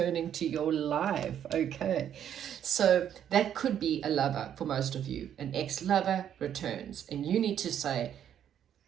to your life. Okay, so that could be a lover for most of you. An ex-lover returns, and you need to say,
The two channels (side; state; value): left; quieter; 9.7 dB